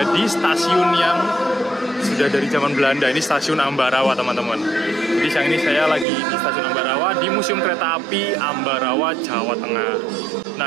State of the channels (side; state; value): left; drops out; at 6.1 s